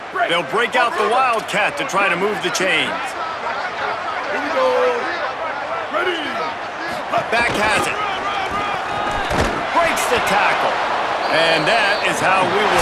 They'll break out the Wildcat to try to move the chains. Here we go. Ready. Back has it. Breaks the tackle. And that is how we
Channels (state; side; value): identical; both; correlation 1.00